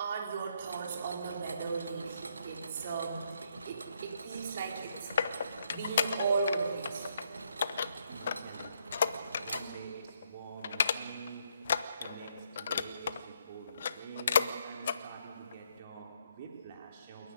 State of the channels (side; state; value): both; inverted; correlation -0.74